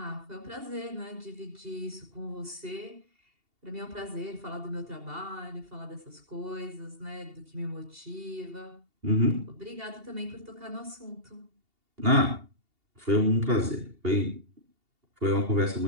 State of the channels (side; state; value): left; late; 2.8 ms